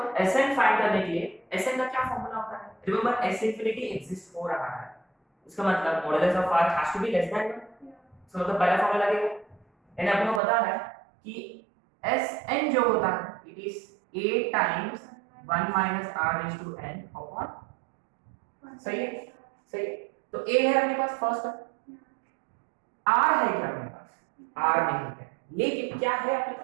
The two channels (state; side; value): drops out; left; at 10.4 s